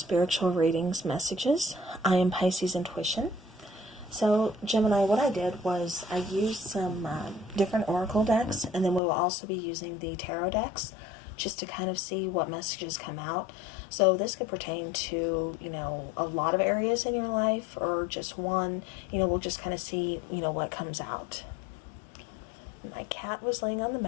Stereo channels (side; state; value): right; drops out; at 9.0 s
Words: readings messages. I am Pisces Intuition. So, Gemini, what I did was I used some different oracle decks, and then we will also be using the tarot decks just to kind of see what messages come out. So this could pertain to, a lot of areas in your life or just one. We'll just kind of see, what comes out. My cat was laying on the